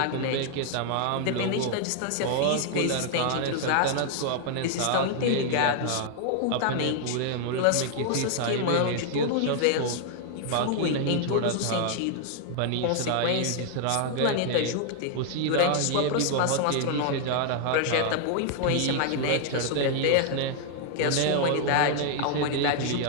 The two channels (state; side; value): different; both; correlation 0.00